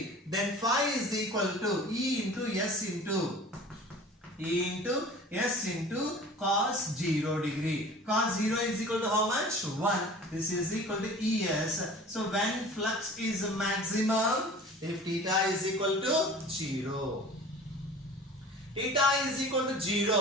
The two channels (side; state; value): both; normal; correlation 0.42